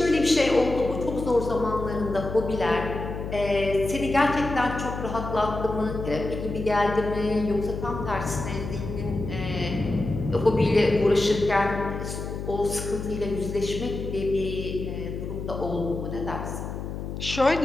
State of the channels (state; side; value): noise; left; hum, 6 dB below the sound